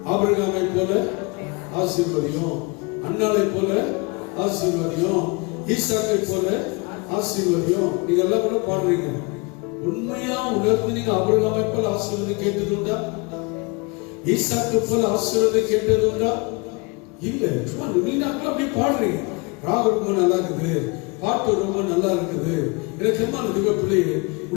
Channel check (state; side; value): quieter; right; 29.0 dB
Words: ஆபிரகாமை போல ஆசீர்வதியும், அன்னாளை போல ஆசீர்வதியும், ஈசாக்கை போல ஆசீர்வதியும். நீங்க எல்லாம் கூட பாடுறீங்க. உண்மையா உணர்ந்து நீங்க ஆபிரகாமை போல ஆசீர்வாதம் கேட்டது உண்டா? ஈசாக்கை போல ஆசீர்வாதம் கேட்டது உண்டா? இல்ல. சும்மா நீங்க அப்படி பாடுறீங்க. ராகம் ரொம்ப நல்லா இருக்குது, பாட்டு ரொம்ப நல்லா இருக்குது. எனக்கு என்ன பிள்ளையே,